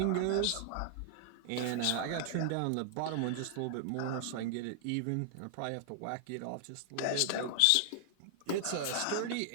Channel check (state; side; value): different; both; correlation 0.00